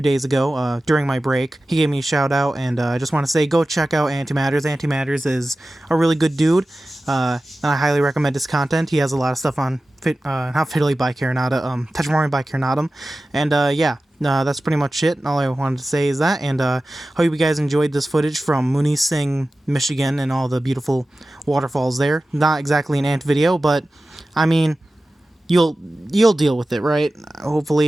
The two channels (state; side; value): normal; both; correlation 0.95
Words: days ago during my break. He gave me a shout-out, and I just want to say go check out Antimatters. Antimatters is a really good dude, and I highly recommend his content. He has a lot of stuff on not Fiddly by Carinata, Tetramorian by Carinatum, and yeah. That's pretty much it. All I wanted to say is that, and hope you guys enjoyed this footage from Munising, Michigan, and all the beautiful waterfalls there. Not exactly an ant video, but I mean, you'll deal with it, right?